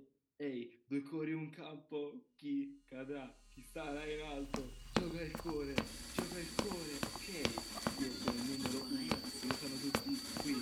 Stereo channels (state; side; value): identical; both; correlation 1.00